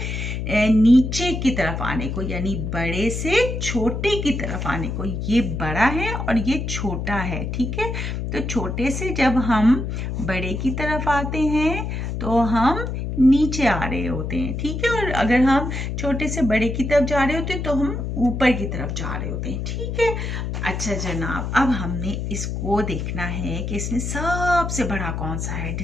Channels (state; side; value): noise; left; hum, 3 dB below the sound